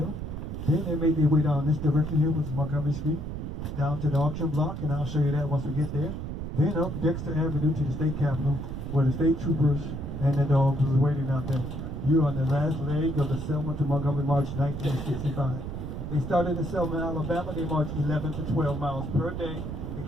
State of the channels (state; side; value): noise; right; rumble, 6 dB below the sound